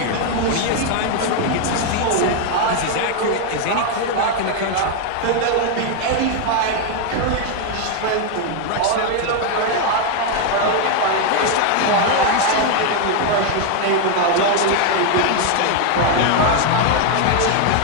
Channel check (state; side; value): different; both; correlation 0.01